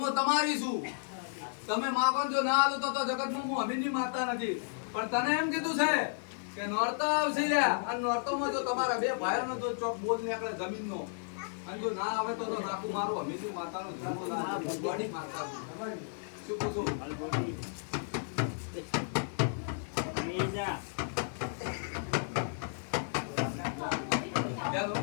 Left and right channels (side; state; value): right; silent; digital silence